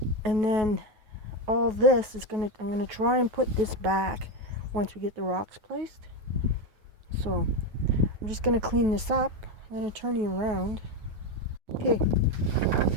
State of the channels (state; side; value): late; left; 9.3 ms